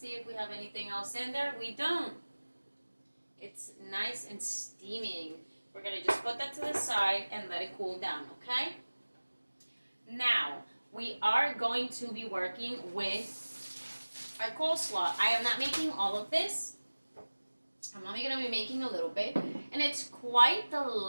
if we have anything else in there. We don't. It's nice and steaming. We're gonna just put that to the side and let it cool down, okay? Now, we are going to be working with our coleslaw. I am not making all of this. I'm only gonna be making a little bit. And it's quite the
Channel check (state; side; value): inverted; both; correlation -1.00